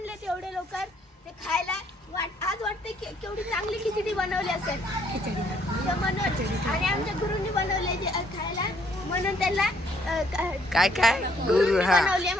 तेवढे लवकर ते खायला. आज वाटते केवढी चांगली खिचडी बनवली असेल म्हणून. आणि आमच्या गुरुंनी बनवले खायला म्हणून त्यांना काय काय गुरु बनवले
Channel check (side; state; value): both; normal; correlation 0.66